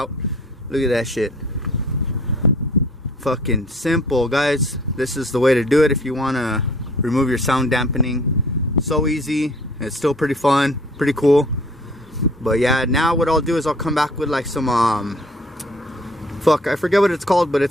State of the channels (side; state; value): both; normal; correlation 0.53